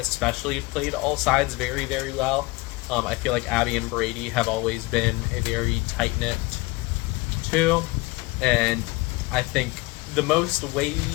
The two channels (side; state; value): right; quieter; 23.2 dB